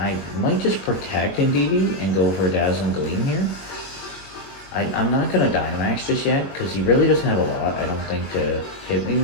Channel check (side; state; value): right; late; 21 ms